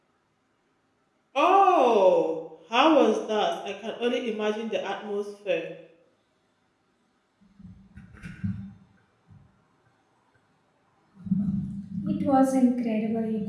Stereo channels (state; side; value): identical; both; correlation 1.00